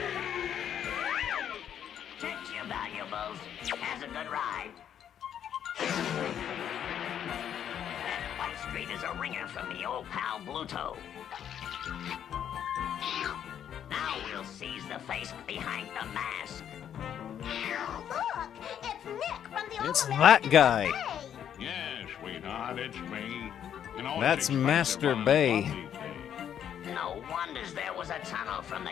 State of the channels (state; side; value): quieter; right; 9.4 dB